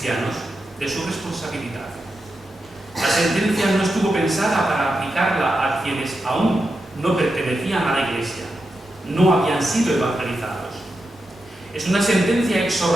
de su responsabilidad. La sentencia no estuvo pensada para aplicarla a quienes aún no pertenecían a la Iglesia, no habían sido evangelizados. Es una sentencia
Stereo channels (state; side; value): normal; both; correlation 0.88